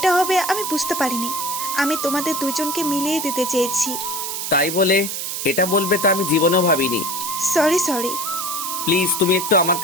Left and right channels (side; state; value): right; noise; hiss, 4 dB below the sound